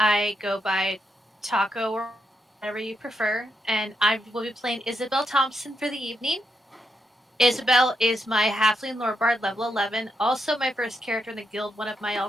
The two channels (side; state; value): both; normal; correlation 0.81